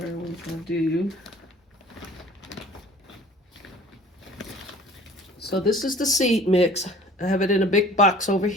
when I do. So this is the seed mix. I have it in a big box over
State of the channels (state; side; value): normal; both; correlation 0.48